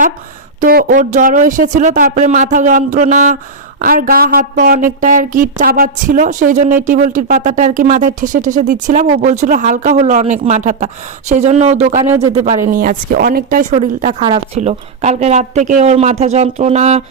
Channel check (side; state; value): left; quieter; 4.0 dB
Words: তো ওর জ্বরও এসেছিলো, তারপরে মাথা যন্ত্রণা আর গা হাত পা অনেকটা আর কি চাবাচ্ছিল, সেই জন্য এই টিবলটির পাতাটা আর কি মাথায় ঠেসে ঠেসে দিচ্ছিলাম। ও বলছিল হালকা হলো অনেক মাথাটা, সেই জন্য ও দোকানেও যেতে পারেনি আজকে, অনেকটাই শরীরটা খারাপ ছিল। কালকে রাত থেকে ওর মাথা যন্ত্রণা,